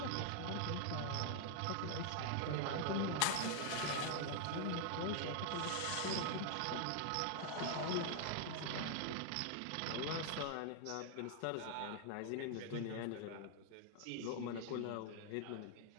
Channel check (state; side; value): different; both; correlation 0.00